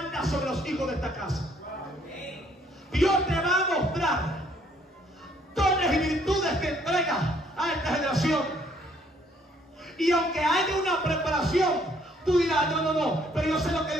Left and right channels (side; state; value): both; normal; correlation 0.65